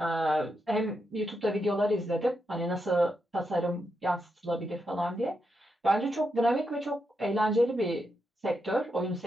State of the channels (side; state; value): both; normal; correlation 0.84